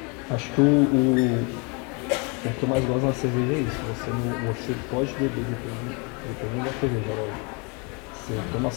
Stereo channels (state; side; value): quieter; right; 32.2 dB